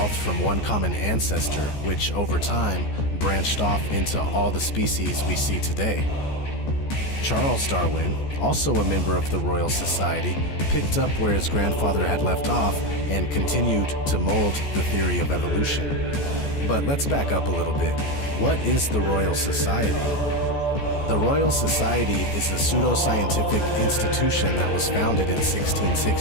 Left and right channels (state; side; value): late; right; 14 ms